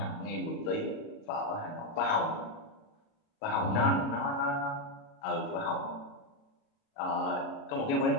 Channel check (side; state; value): right; late; 36 ms